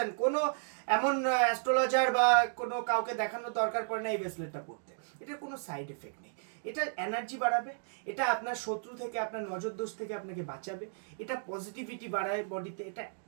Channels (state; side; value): silent; left; digital silence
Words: কোনো এমন অ্যাস্ট্রোলজার বা কোনো কাউকে দেখানোর দরকার পড়ে না এই ব্রেসলেটটা পড়তে। এটার কোনো সাইড এফেক্ট নেই। এটা এনার্জি বাড়াবে, এটা আপনার শত্রু থেকে, আপনার নজর দোষ থেকে আপনাকে বাঁচাবে, এটা পজিটিভিটি বাড়ায় বডিতে, এটা